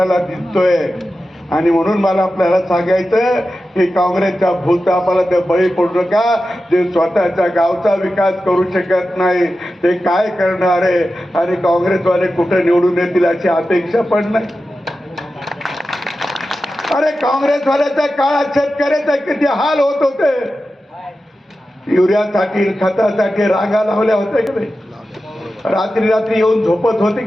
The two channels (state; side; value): normal; both; correlation 0.93